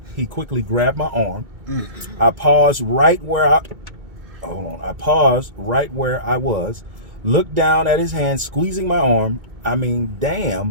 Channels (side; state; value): left; late; 2.2 ms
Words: He quickly grabbed my arm. I paused right where I was, looked down at his hand, squeezing my arm. I mean,